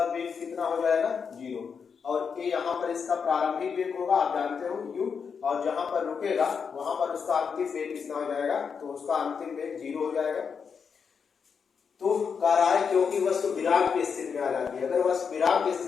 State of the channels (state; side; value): quieter; right; 6.2 dB